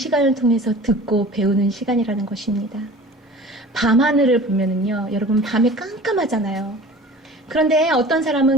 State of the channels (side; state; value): both; normal; correlation 0.42